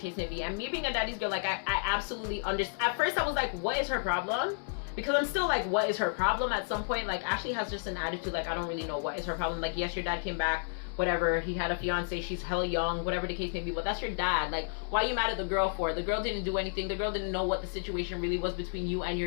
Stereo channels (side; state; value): right; silent; digital silence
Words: may be. And me being a daddy's girl, like, I absolutely understand. At first I was like, what is her problem? Because I'm still like, what is her problem? At some point, like, Ashley has just an attitude like, I don't really know what is her problem. Like, yes, your dad came back, whatever, he had a fiance, she's hella young, whatever the case may be, but that's your dad. Like, why are you mad at the girl for? The girl didn't do anything. The girl didn't know what the situation really was between you and